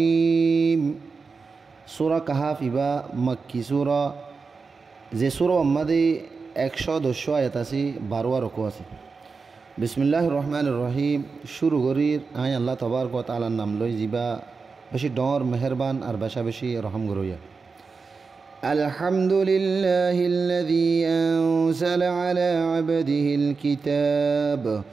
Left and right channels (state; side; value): quieter; left; 4.7 dB